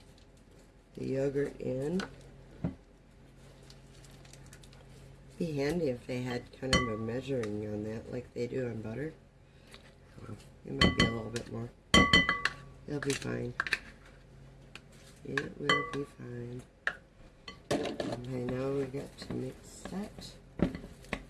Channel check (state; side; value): identical; both; correlation 1.00